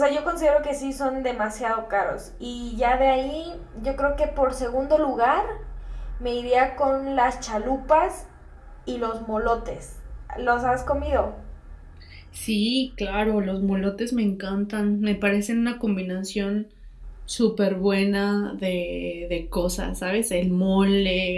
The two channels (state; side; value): identical; both; correlation 1.00